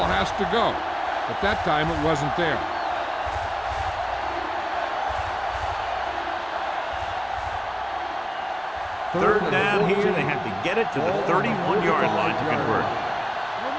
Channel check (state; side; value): identical; both; correlation 1.00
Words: has to go. At that time, it wasn't there. Third down here. They have to get it to the 31-yard line to convert.